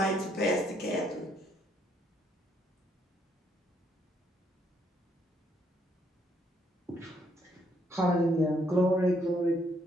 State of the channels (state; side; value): normal; both; correlation 0.71